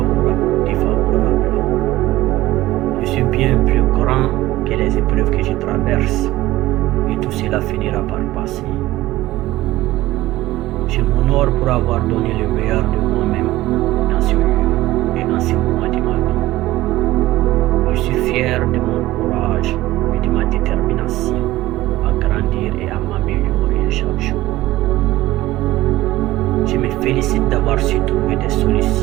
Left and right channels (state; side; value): quieter; left; 16.8 dB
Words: ou défavorables. Je suis bien plus grand que les épreuves que je traverse, et tout cela finira par passer. Je m'honore pour avoir donné le meilleur de moi-même dans ce lieu et en ce moment de ma vie. Je suis fier de mon courage et de ma détermination à grandir et à m'améliorer chaque jour. Je me félicite d'avoir su trouver des